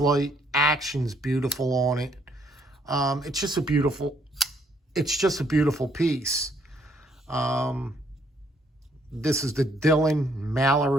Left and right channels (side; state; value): both; normal; correlation 0.68